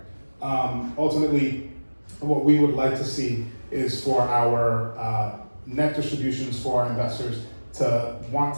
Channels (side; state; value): both; inverted; correlation -1.00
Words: Ultimately, what we would like to see is for our net distributions for our investors to want